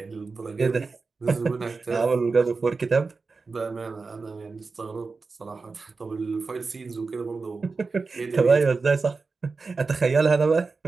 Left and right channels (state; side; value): quieter; left; 4.3 dB